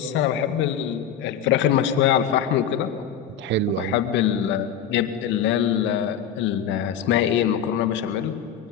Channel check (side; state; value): right; quieter; 8.1 dB